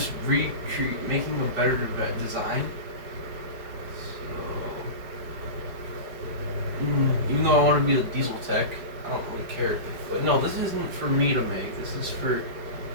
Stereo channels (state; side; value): late; left; 4.9 ms